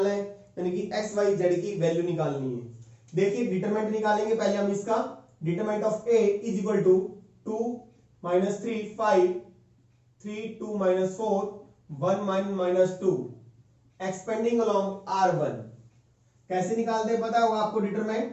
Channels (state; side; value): identical; both; correlation 1.00